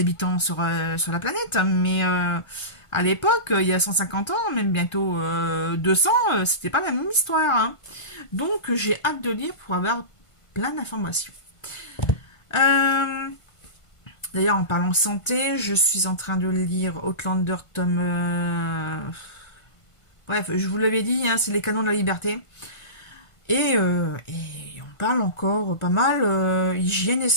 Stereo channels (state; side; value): late; right; 1.5 ms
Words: sur la planète, mais à l'époque, il y a 150 ans, même bientôt 200, c'était pas la même histoire. Hein. Donc, j'ai hâte de lire pour avoir plein d'informations. D'ailleurs, en parlant santé, je suis en train de lire Outlander tome... Bref, je vous l'avais dit, hein, c'est les canons de la liberté. Et on parle encore pas mal hygiène et